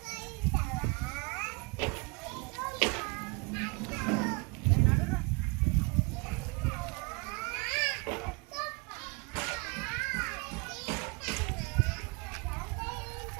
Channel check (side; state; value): left; quieter; 30.2 dB